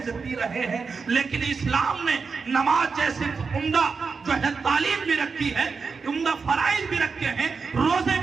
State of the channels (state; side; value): quieter; left; 5.0 dB